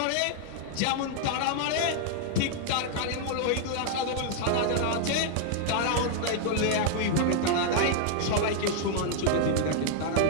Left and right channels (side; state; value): both; different; correlation 0.00